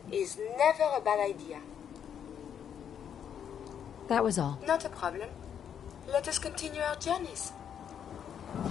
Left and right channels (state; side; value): quieter; right; 8.5 dB